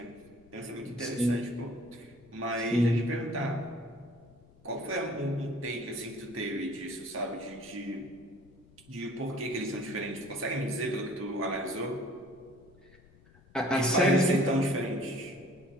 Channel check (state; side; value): noise; left; rumble, 26 dB below the sound